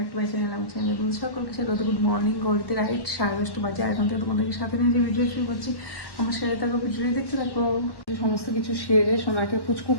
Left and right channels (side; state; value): right; late; 1.1 ms